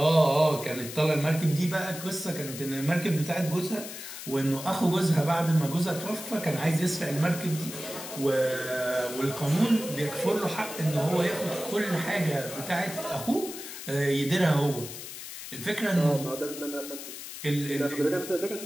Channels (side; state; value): left; noise; hiss, 10 dB below the sound